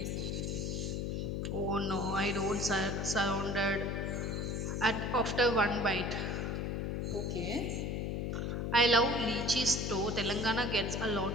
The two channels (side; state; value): left; noise; hum, 1 dB below the sound